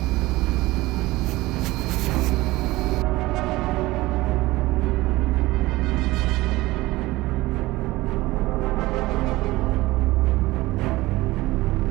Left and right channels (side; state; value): left; quieter; 19.2 dB